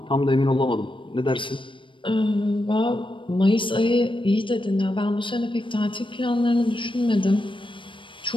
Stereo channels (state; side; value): late; right; 0.24 ms